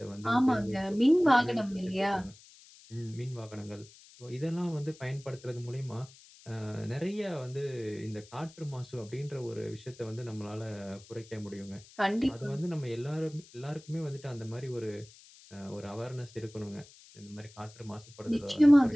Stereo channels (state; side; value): noise; left; hiss, 22 dB below the sound